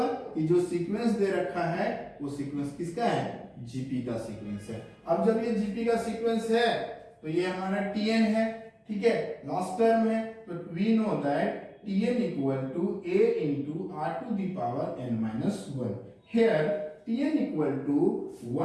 कि जो सीक्वेंस दे रखा है वो सीक्वेंस किसका है, जीपी का सीक्वेंस है। अब जब ये जीपी का सीक्वेंस है तो ये हमारा tn है। ठीक है, लास्ट टर्म है, तो we know that tn equal to a into r to the power n minus 1। here tn equal to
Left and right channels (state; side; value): identical; both; correlation 1.00